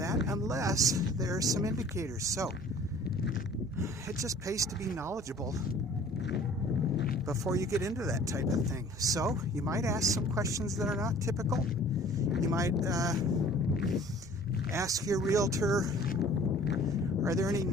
unless there are some indicators. So it just pays to be knowledgeable before you get into that type of thing. So you might ask some questions that are not typical. You might ask your realtor, are there any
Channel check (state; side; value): noise; right; hum, 21 dB below the sound